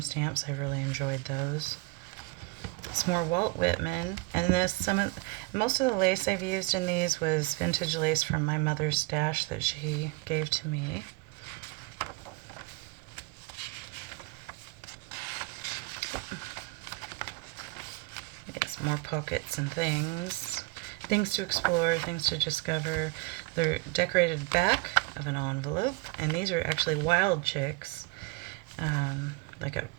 I really enjoyed those. Some more Walt Whitman, and most of the lace I've used in these was vintage lace from my mother's stash that she gave to me. Yes, more pockets and things to explore, things to discover. They're decorated back of an envelope, and these are actually wild chicks, like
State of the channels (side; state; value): left; quieter; 25.3 dB